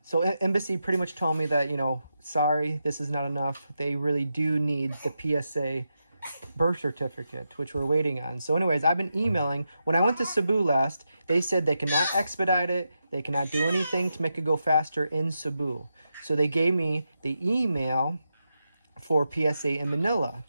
Embassy pretty much told me that, sorry, this is not enough. They really do need the PSA birth certificate, which we're waiting on. So anyways, I've been emailing. When I went to Cebu last, they said they cannot expedite it. They cannot do anything to make it go faster in Cebu. So they gave me the email for PSA in Manila.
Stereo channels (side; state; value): both; inverted; correlation -0.87